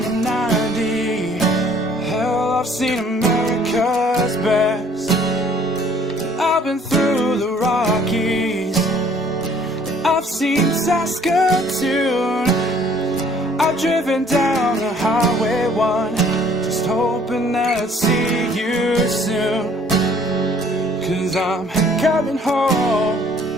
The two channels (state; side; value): normal; both; correlation 0.58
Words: the 90. Hell, I've seen America's best. I've been through the Rockies. I've seen Saskatoon. I've driven down the Highway 1, just hoping that I'd see you soon. 'Cause I'm coming home,